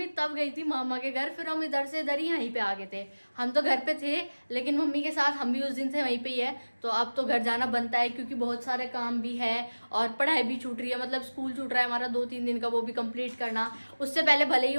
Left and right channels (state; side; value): inverted; both; correlation -1.00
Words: तब गई थी मामा के घर। फिर हम इधर से इधर ही यहीं पे आ गए थे। हम तो घर पे थे लेकिन मम्मी के साथ हम भी उस दिन से वहीं पे ही है। तो अब तो घर जाना बनता है क्योंकि बहुत सारे काम भी है और पढ़ाई भी छूट रही है। मतलब स्कूल छूट रहा है हमारा 2-3 दिन का, वो भी कंप्लीट करना। उससे पहले भले ही